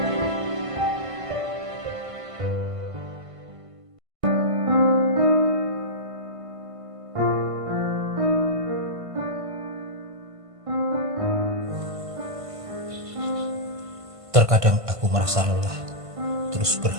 Terkadang aku merasa lelah, terus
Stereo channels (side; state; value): left; late; 1.5 ms